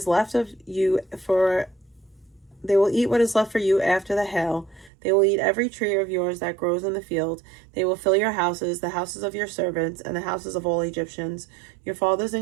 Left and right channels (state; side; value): drops out; left; at 4.9 s